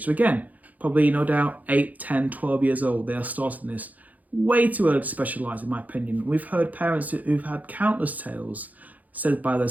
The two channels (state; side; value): late; left; 0.079 ms